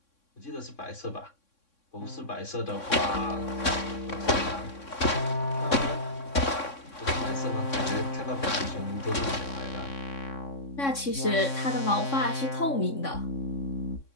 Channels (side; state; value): right; late; 3.6 ms